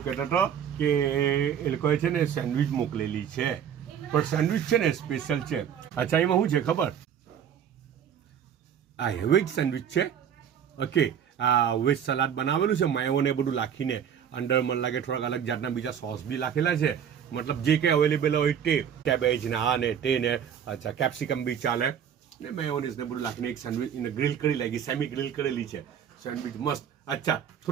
કહેતો હતો કે એ લોકોએ છે ને સેન્ડવિચ મોકલેલી છે પણ સેન્ડવિચ છે ને સ્પેશિયલ છે અચ્છા એમાં શું છે ખબર આ વેજ સેન્ડવિચ છે ઓકે આ વેજ સલાડ બનાવેલું છે માયોને બધું નાખીને અંદર મને લાગે થોડાક અલગ જાતના બીજા સોસ બી નાખેલા છે મતલબ જે કંઈ અવેલેબલ હોય તે કેબેજ ને આ ને તે ને અચ્છા કેપ્સિકમ બી ચાલે ને મેયોનીઝ ને બધું નાખીને એક સેન્ડવિચ એને ગ્રીલ કરી લાગી સેમી ગ્રીલ કરેલી છે સેન્ડવિચ મસ્ત અચ્છા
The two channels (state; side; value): quieter; left; 8.6 dB